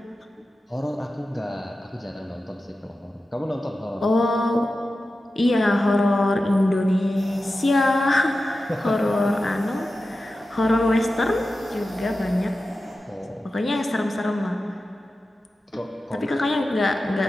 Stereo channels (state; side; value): normal; both; correlation 0.93